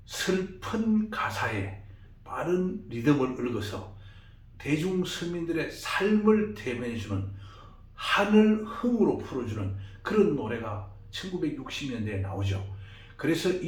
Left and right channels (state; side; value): identical; both; correlation 1.00